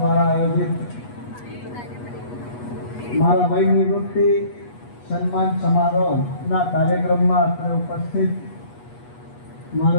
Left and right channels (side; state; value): right; late; 8.3 ms